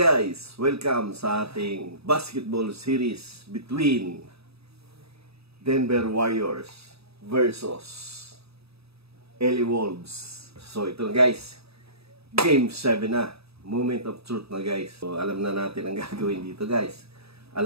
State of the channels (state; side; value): late; left; 0.78 ms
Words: Welcome sa ating basketball series between Denver Warriors versus LA Wolves. So ito na guys, Game 7 na. Moment of truth na guys. So alam na natin ang gagawin dito guys.